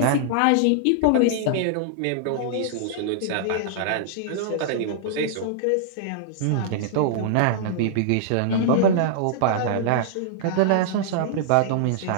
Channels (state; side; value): different; both; correlation -0.01